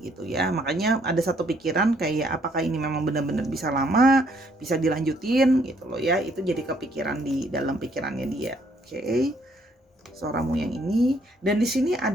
gitu ya. Makanya ada satu pikiran kayak apakah ini memang benar-benar bisa lama, bisa dilanjutin gitu loh ya. Itu jadi kepikiran di dalam pikirannya dia. Oke. Soramu yang ini, dan di sini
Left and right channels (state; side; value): normal; both; correlation 0.67